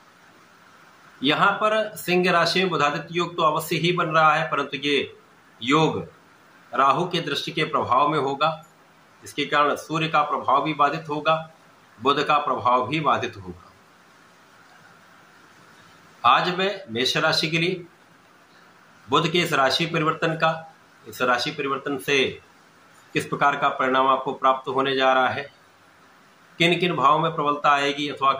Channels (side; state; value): both; identical; correlation 1.00